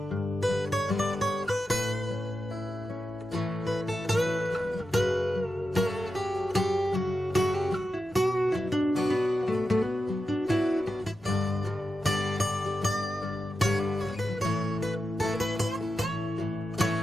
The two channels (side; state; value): both; normal; correlation 0.89